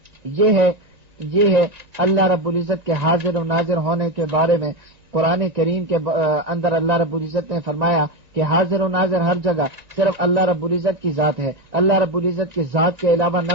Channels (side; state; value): left; late; 1.9 ms